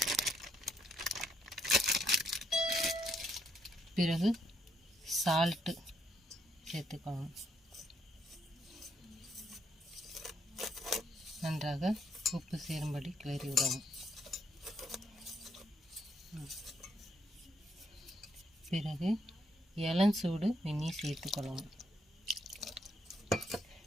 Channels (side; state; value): both; normal; correlation 0.73